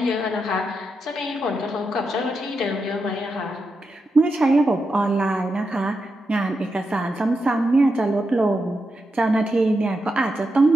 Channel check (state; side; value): normal; both; correlation 0.86